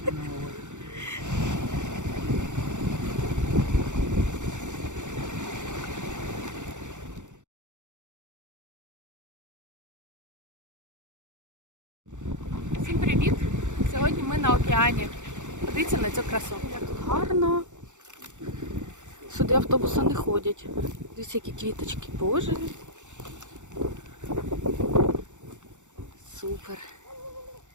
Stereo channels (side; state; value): left; late; 0.85 ms